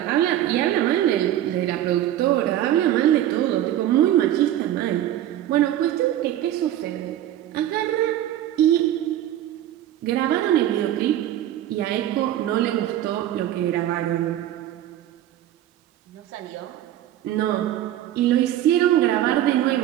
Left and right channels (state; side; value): quieter; left; 12.5 dB